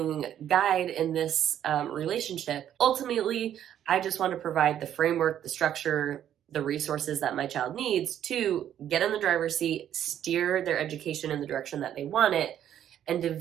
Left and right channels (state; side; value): quieter; left; 10.5 dB